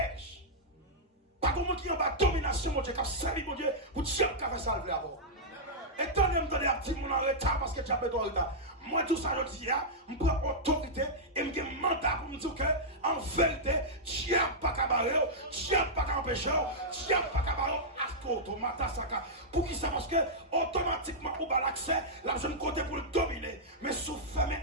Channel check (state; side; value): normal; both; correlation -0.09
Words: Pas comme qui en bas domination, mon Dieu, qui a servi mon Dieu, pour Dieu qui a fait ça le avant. Et tant que je me donne un petit monde en retard parce que tu as fait ton retard. Moi, tout ça, je dis, je prends autorité et je me mandat pour me dire que, en vérité, tu n'as pas qu'à barrer, tu n'as pas qu'à empêcher, tu n'as pas qu'à barrer, pour qui ça? Parce que, automatiquement, on a l'accès, là, je me compte pour le dominer. Mais sous fermer